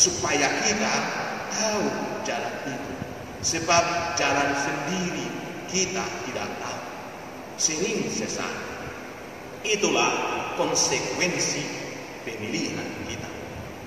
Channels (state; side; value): identical; both; correlation 1.00